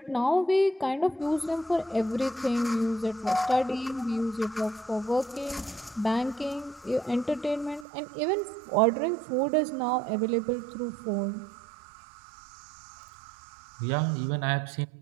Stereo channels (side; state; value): left; drops out; at 7.9 s